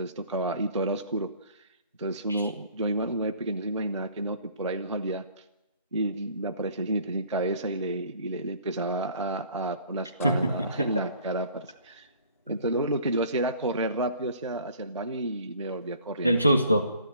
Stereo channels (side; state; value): both; inverted; correlation -0.53